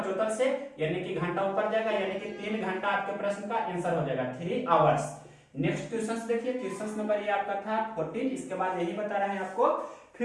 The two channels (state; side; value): identical; both; correlation 1.00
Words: से, यानी कि घंटा ऊपर जाएगा, यानी कि 3 घंटा आपके प्रश्न का आंसर हो जाएगा 3 आवर्स। नेक्स्ट क्वेश्चन देखिए, क्वेश्चन नंबर ये आपका था 14, इसके बाद यही बता रहे हैं आपको